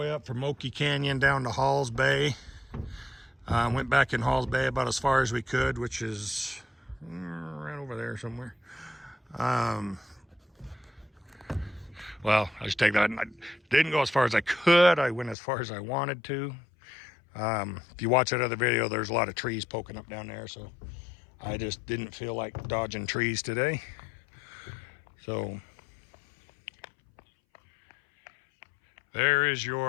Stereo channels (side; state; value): right; drops out; at 15.4 s